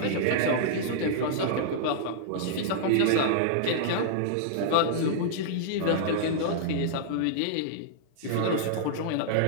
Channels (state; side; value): different; both; correlation -0.01